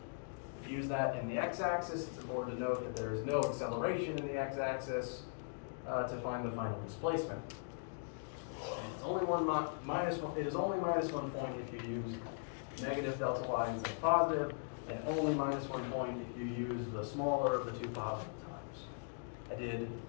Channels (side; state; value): right; silent; digital silence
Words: use that in the x-axis. It's important to note that there is no acceleration in the x-axis to find the final displacement. And it's only it is only -1 point if you use negative delta y instead of positive, and only -1 point if you use the smaller of the 2 positive times. I did